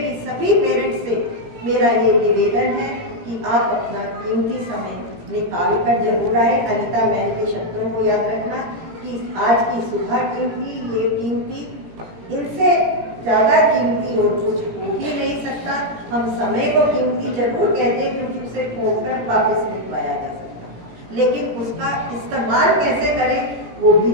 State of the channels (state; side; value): late; left; 17 ms